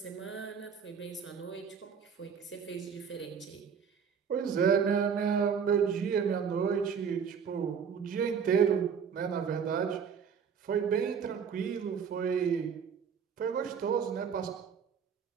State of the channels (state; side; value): quieter; left; 6.9 dB